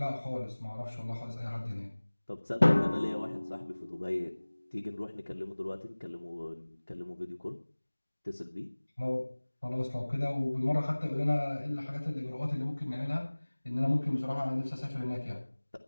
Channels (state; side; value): inverted; both; correlation -1.00